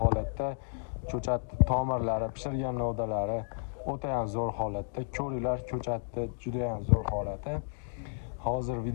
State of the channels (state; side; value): silent; right; digital silence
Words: ko'chatni tomirlari, pishirgan novdalari o'ta ham zo'r holatda. Ko'ringlar, ko'chatni juda ham zo'r holati. Hozir